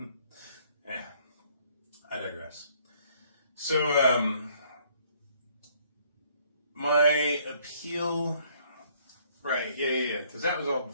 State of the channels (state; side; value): inverted; both; correlation -0.63